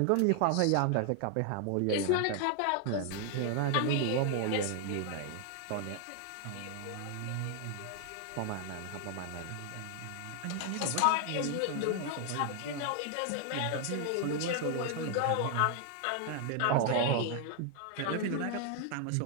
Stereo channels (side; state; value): both; different; correlation 0.00